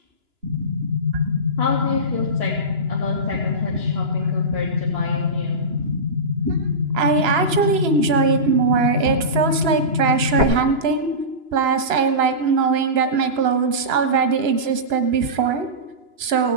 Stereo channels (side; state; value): left; late; 2.9 ms